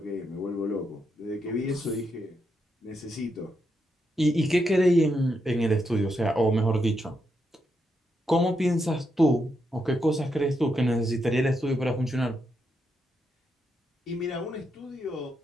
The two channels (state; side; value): normal; both; correlation 0.82